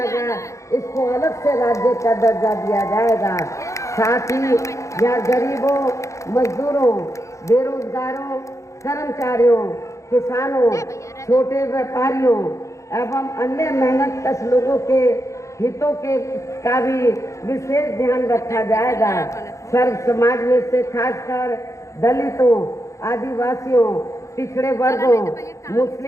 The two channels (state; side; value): late; right; 0.15 ms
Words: इसको अलग से राज्य का दर्जा दिया जाएगा। साथ ही यहाँ गरीबों, मजदूरों, बेरोजगारों, कर्मचारियों, किसानों, छोटे व्यापारियों एवं अन्य मेहनतकश लोगों के हितों के का भी विशेष ध्यान रखा जाएगा। सर्व समाज में से खासकर दलितों, आदिवासियों, पिछड़े वर्गों,